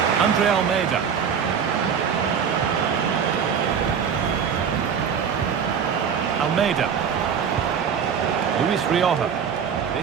Andre Almeida. Almeida. Luis Rioja.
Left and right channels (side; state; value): left; quieter; 7.2 dB